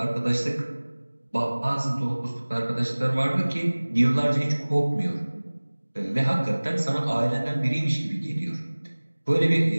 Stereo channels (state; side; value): inverted; both; correlation -1.00